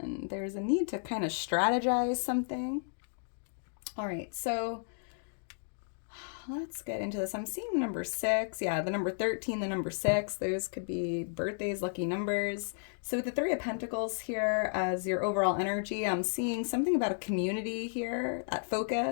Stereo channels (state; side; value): silent; right; digital silence